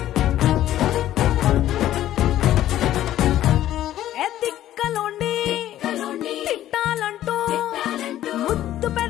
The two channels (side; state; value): right; quieter; 13.0 dB